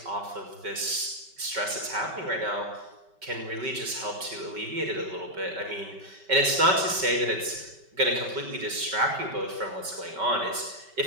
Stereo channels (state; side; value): late; left; 5.2 ms